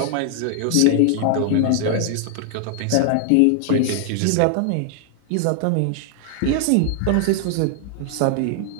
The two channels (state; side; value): different; both; correlation 0.00